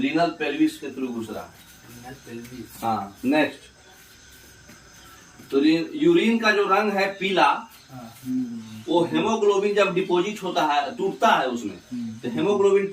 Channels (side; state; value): both; identical; correlation 1.00